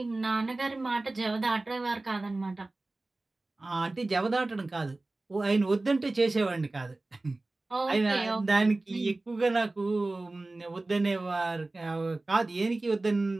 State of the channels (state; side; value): quieter; left; 3.0 dB